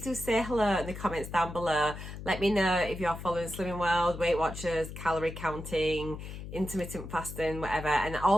do say hello in the comments down below. Let me know if you're following Slimming World, Weight Watchers, calorie counting, intermittent fasting, whatever, and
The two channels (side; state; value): left; noise; hum, 10 dB below the sound